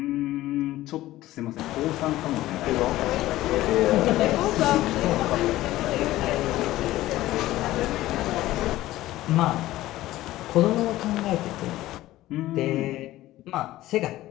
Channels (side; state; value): right; quieter; 15.9 dB